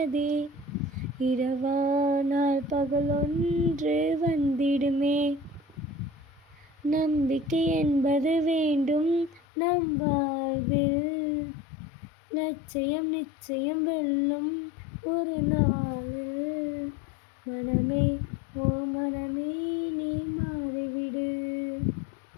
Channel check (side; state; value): right; drops out; at 9.4 s